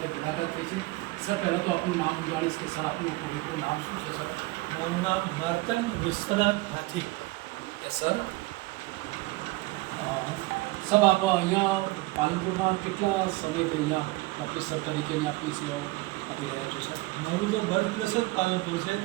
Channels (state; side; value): quieter; left; 21.5 dB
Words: મુલાકાત થઈ છે. સર, પહેલાં તો આપનું નામ હું જાણીશ કે સર આપનું પૂરેપૂરું નામ શું છે? સર, મારું નામ માર્તંડ વિશ્વનાથ હાથી. સર, સબ આપ અહીંયા પાલનપુરમાં કેટલા સમયથી અહીંયા પ્રોફેસર તરીકેની આપની સેવાઓ આપી રહ્યા છો? સર, મારું તો બર્થ પ્લેસ જ પાલનપુર છે.